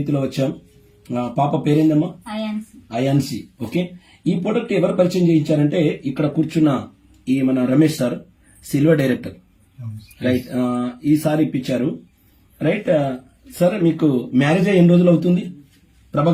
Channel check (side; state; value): both; identical; correlation 1.00